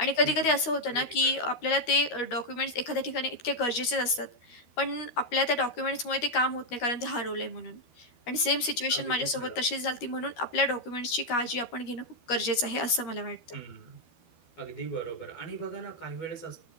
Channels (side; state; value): right; late; 12 ms